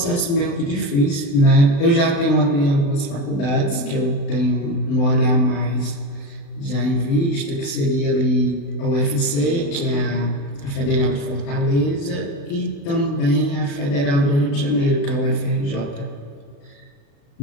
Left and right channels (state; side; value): late; right; 36 ms